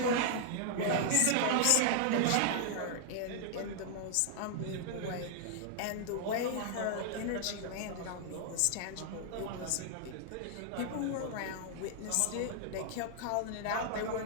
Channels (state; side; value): different; both; correlation 0.00